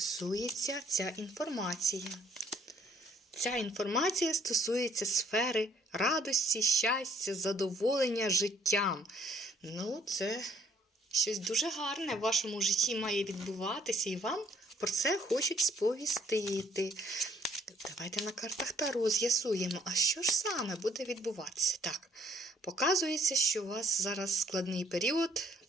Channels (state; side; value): normal; both; correlation 0.63